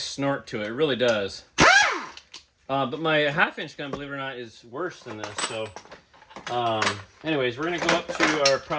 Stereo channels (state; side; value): identical; both; correlation 1.00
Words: to it. It really does. But my 1/2-inch gun, believe it or not, is worse than this. So, anyways, we're gonna go up to our